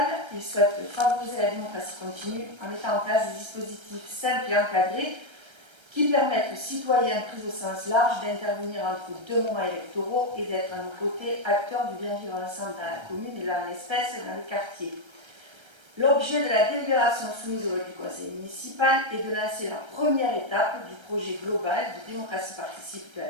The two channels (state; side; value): late; left; 1.3 ms